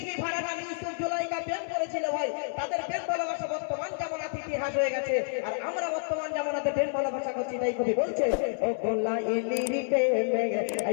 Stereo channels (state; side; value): silent; right; 56 dB below the other